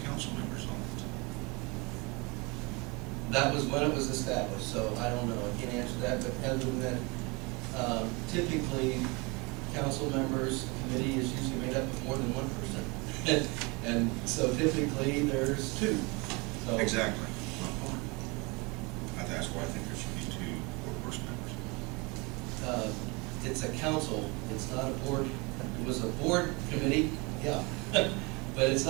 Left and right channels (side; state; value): left; quieter; 27.7 dB